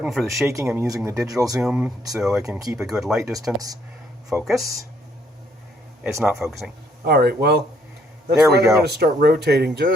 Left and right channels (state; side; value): normal; both; correlation 0.68